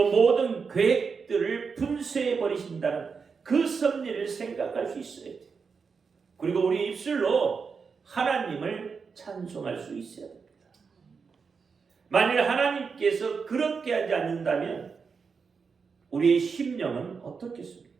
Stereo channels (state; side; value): quieter; left; 5.4 dB